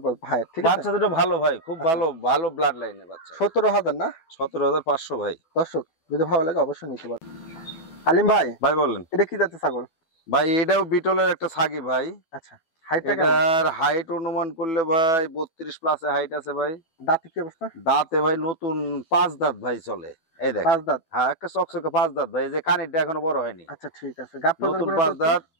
ভাই, ঠিক আছে? বাচ্চা দুটো ভালো ভাই, খুব ভালো, ভালো ব্লাড লাইনের বাচ্চা। 17,000 না? 17,500 ভাই। দর্শক যদি ভালো লাগে অবশ্যই নিতে পারেন। আলিম ভাই, ভাই বলেন। এটা কি জাতের ছাগল? ভাই এটাও বিটলের একটা ছাগি ভাই। আচ্ছা, হাইটটা কেমন? এটার হাইট অনুমান করলে ভাই 32 প্লাসে হাইট আছে ভাই। দাঁতে কি অবস্থা? দাঁতে ভাই নতুন 5 দাঁত ভাই চলে। এই দেখ, 5 দাঁত। হ্যাঁ একটা চকচকে 5 দাঁত ভাই, এই যে কানেরটা এখনো বড় হয়নি। আচ্ছা ঠিক আছে। গাব নতুন প্রদান 5 দাঁত।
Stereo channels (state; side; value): late; right; 12 ms